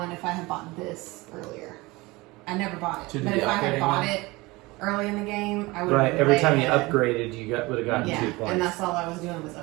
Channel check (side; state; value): left; quieter; 22.3 dB